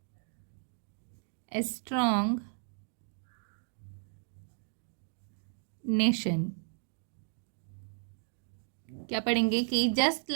a strong nation। क्या पढ़ेंगे कि just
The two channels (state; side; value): silent; left; digital silence